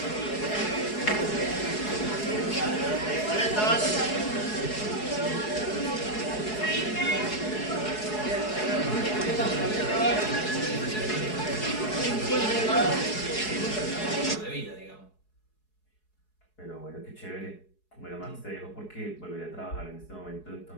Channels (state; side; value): late; right; 4.7 ms